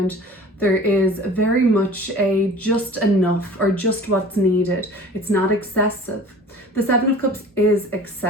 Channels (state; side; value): normal; both; correlation 0.43